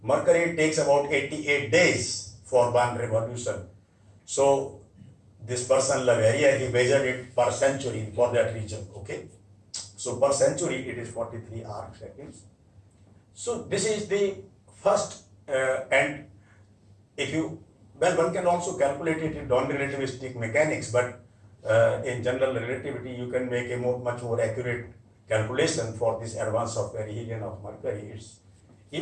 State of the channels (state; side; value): identical; both; correlation 1.00